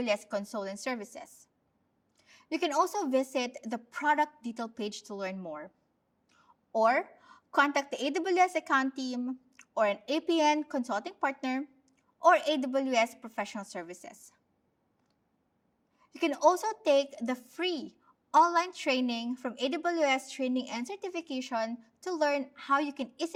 Console and services. You can also visit the product detail page to learn more, or contact the AWS account team or an APN consulting partner or AWS professional services. You can also take the free online training from AWS Training and Certification to learn how you can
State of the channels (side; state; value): both; identical; correlation 1.00